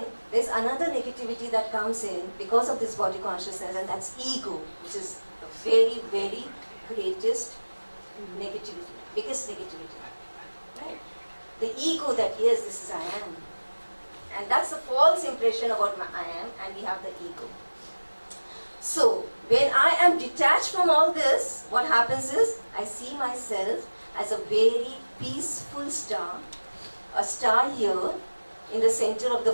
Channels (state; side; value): inverted; both; correlation -1.00